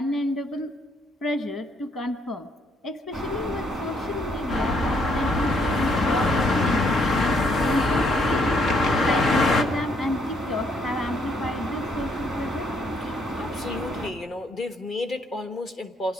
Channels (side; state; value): both; normal; correlation 0.70